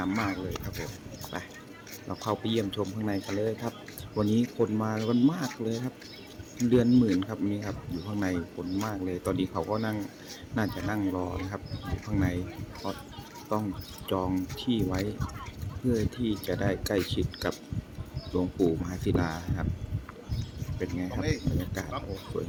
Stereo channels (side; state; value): both; identical; correlation 1.00